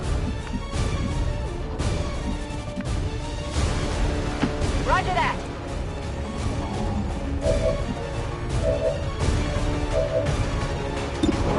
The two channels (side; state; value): both; identical; correlation 1.00